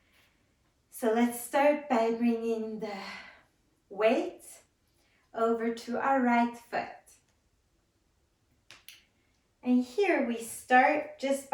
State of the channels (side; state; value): both; identical; correlation 1.00